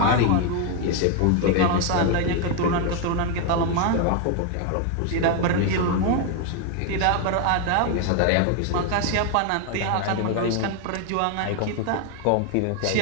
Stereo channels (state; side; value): different; both; correlation 0.01